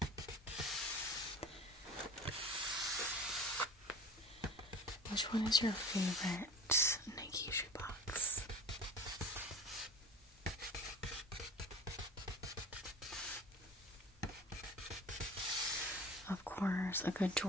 Which one is your favorite Nike shoebox? Of course, a good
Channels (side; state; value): both; normal; correlation 0.39